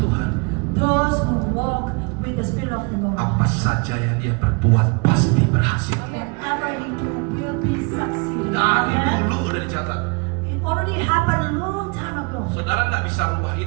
those who walk with the Spirit of the Lord, apa saja yang dia perbuat pasti berhasil. whatever he do will be succeeding. Dari Amen. dulu udah dicatat. It already happened a long time ago. Saudara nggak bisa rubah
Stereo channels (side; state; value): left; quieter; 31.7 dB